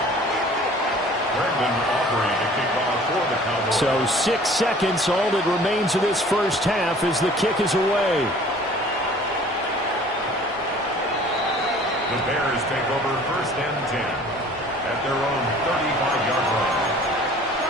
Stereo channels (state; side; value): normal; both; correlation 0.50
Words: Brendan Aubrey to kick off for the Cowboys. So 6 seconds, all that remains of this first half as the kick is away. The Bears take over first and 10 at their own 35-yard line.